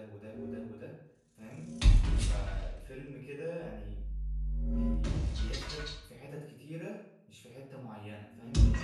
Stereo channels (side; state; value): both; identical; correlation 1.00